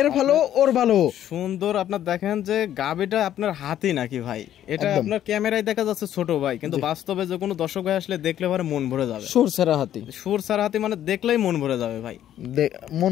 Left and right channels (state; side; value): quieter; right; 11.3 dB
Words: ভালো ওর ভালো সুন্দর। আপনার দেখেন যে গাবিটা আপনার হাতি নাকি ভাই, এটা আপনার ক্যামেরায় দেখা যাচ্ছে ছোট ভাই, কিন্তু বাস্তবে যে কোনো দর্শক ভাই আসলে দেখলে পরে মন ভরে যাবে। সুর সারা হাতি, সুর সারা হাতি মানে দেখলেই মন ভরে যাবে ভাই,